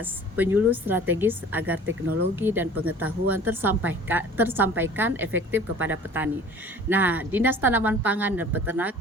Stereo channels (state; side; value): normal; both; correlation 0.46